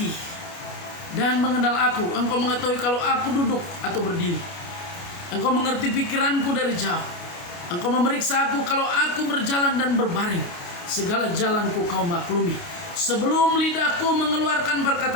dan mengenal aku. Engkau mengetahui kalau aku duduk atau berdiri. Engkau mengerti pikiranku dari jauh. Engkau memeriksa aku kalau aku berjalan dan berbaring. Segala jalanku kau maklumi. Sebelum lidahku mengeluarkan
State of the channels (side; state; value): right; late; 29 ms